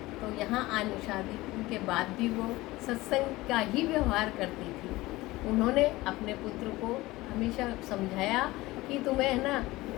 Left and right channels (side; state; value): right; quieter; 19.3 dB